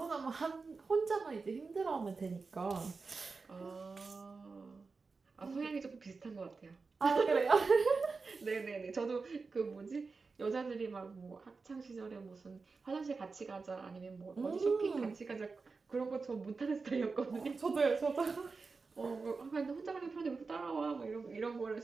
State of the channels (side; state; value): left; quieter; 4.4 dB